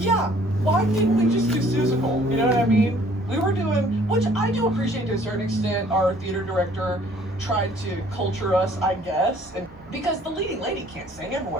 why didn't we just do Susical? You know what I mean? We were doing, which I do appreciate to a certain extent, our theater director tried to culture us, I guess. And because the leading lady can't sing,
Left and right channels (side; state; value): both; normal; correlation 0.57